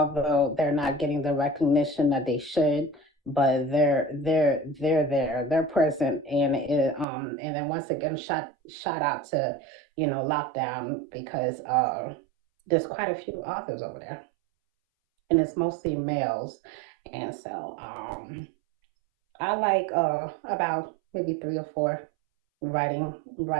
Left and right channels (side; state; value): left; drops out; at 7.1 s